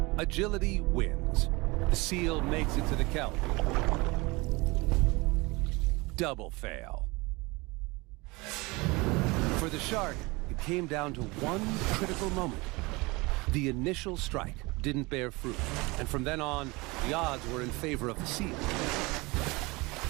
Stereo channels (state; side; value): quieter; left; 24.5 dB